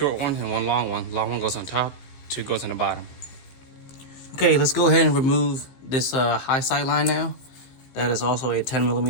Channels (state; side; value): late; right; 15 ms